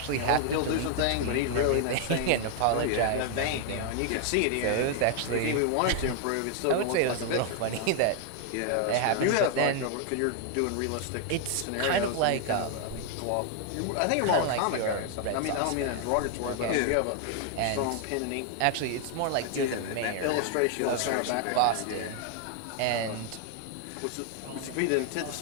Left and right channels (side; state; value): both; different; correlation 0.00